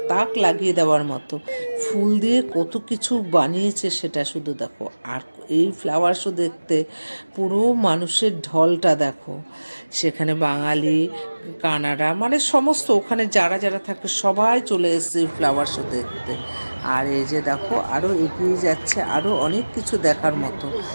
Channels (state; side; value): inverted; both; correlation -1.00